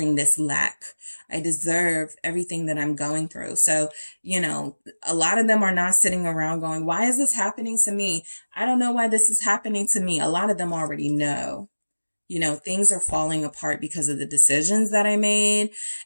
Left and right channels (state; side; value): inverted; both; correlation -1.00